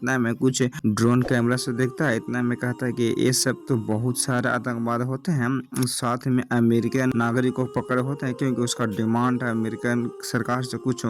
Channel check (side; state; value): both; identical; correlation 1.00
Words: में कुछ ड्रोन कैमरा से देखता है। इतना में कहता है कि ये सब तो बहुत सारे आतंकवाद होते हैं, साथ में अमेरिकन नागरिक को पकड़े होते हैं क्योंकि उसका डिमांड है अमेरिकन सरकार से कुछ